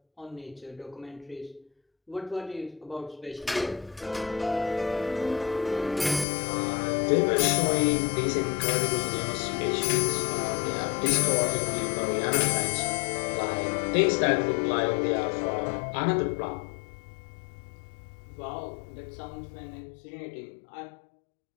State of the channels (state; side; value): drops out; right; at 6.2 s